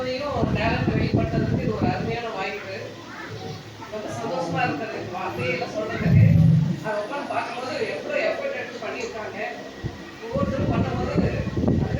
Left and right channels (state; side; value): identical; both; correlation 1.00